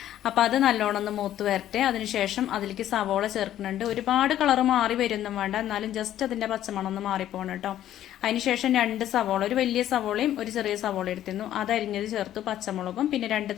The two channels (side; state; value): right; quieter; 12.1 dB